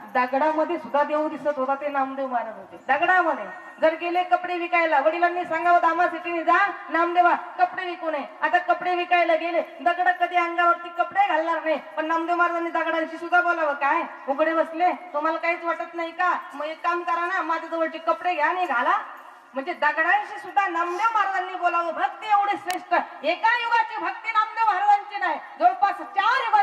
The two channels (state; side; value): identical; both; correlation 1.00